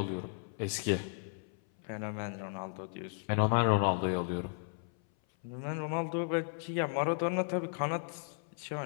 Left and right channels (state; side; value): silent; right; 55 dB below the other